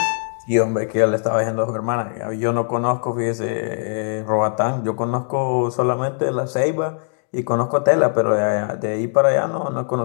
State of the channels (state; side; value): silent; right; digital silence